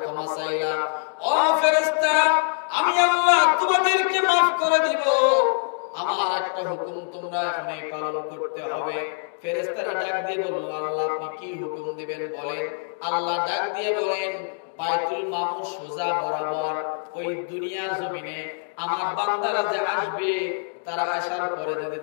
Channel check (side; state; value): right; silent; digital silence